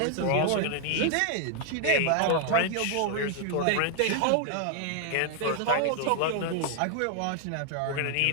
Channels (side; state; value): both; different; correlation 0.00